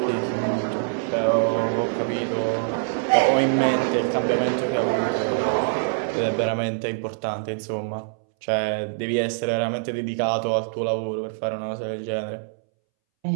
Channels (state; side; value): silent; left; 62 dB below the other